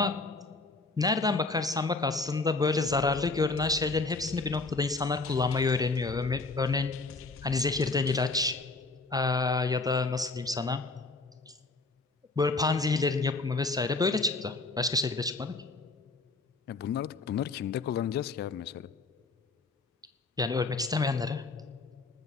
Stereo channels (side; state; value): right; quieter; 3.6 dB